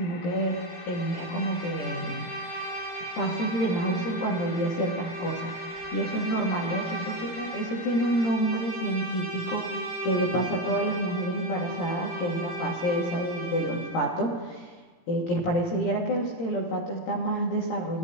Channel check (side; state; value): right; late; 17 ms